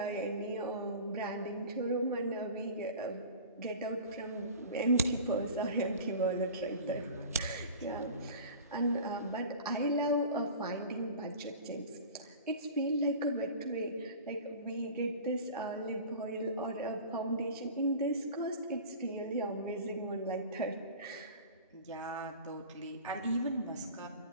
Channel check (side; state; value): both; inverted; correlation -0.38